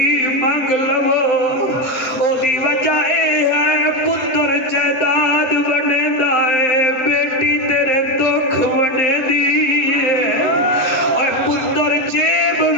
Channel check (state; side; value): late; right; 7.7 ms